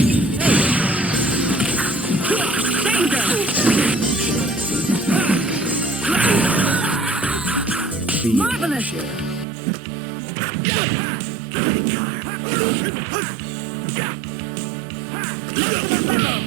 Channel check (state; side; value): drops out; left; at 9.5 s